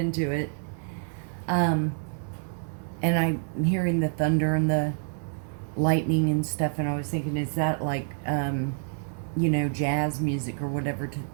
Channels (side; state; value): left; silent; 60 dB below the other